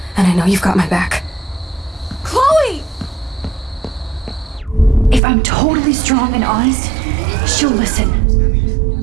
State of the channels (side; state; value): left; drops out; at 5.2 s